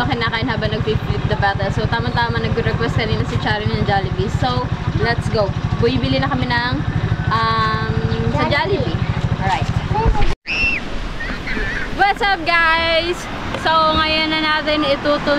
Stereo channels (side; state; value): both; identical; correlation 1.00